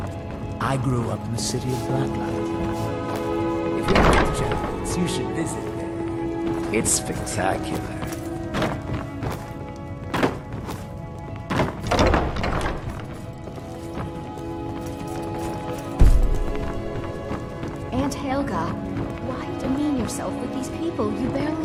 I grew up in the city of Blacklight. If you ever get the chance, you should visit there. It's spectacular. Aunt Helga, why demean yourself with these people you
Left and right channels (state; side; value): identical; both; correlation 1.00